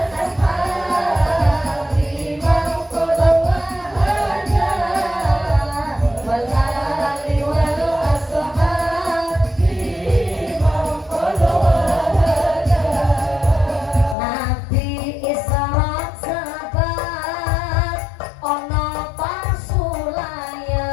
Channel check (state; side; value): drops out; right; at 14.2 s